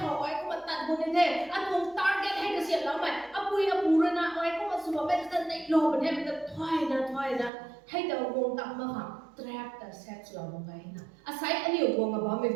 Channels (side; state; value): left; drops out; at 7.5 s